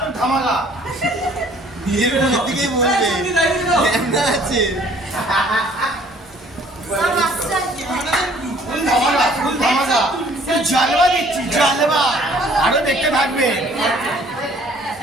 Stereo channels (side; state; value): both; normal; correlation 0.57